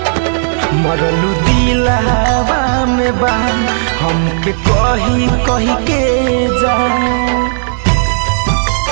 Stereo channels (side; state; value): left; silent; digital silence